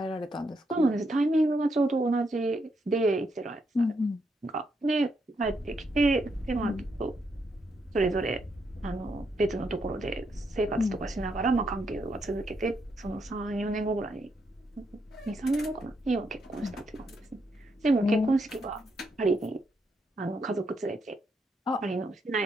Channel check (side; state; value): both; normal; correlation 0.78